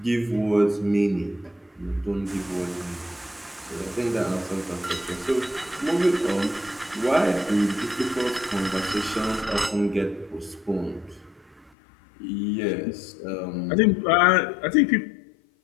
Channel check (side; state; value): right; drops out; at 11.7 s